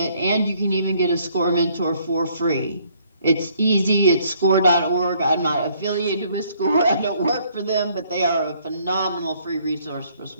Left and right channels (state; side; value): inverted; both; correlation -0.64